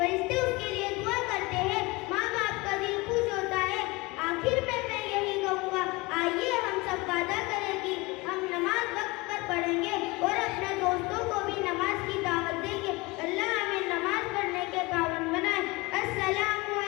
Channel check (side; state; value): right; quieter; 23.5 dB